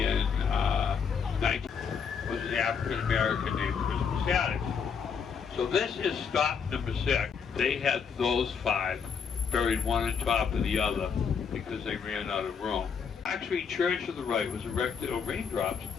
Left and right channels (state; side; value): quieter; right; 6.4 dB